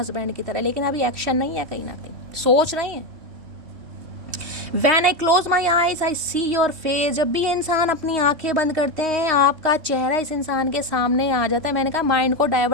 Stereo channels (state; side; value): late; left; 3.2 ms